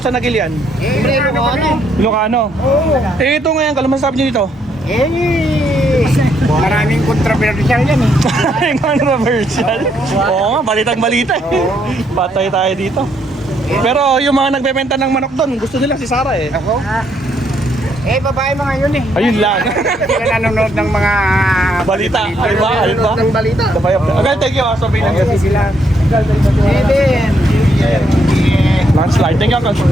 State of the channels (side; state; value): both; normal; correlation 0.73